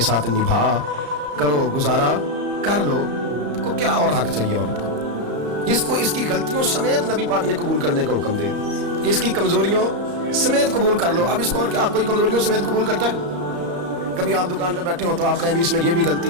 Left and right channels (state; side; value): late; left; 34 ms